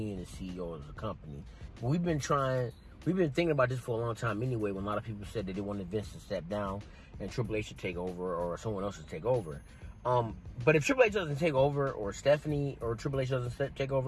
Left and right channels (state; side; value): identical; both; correlation 1.00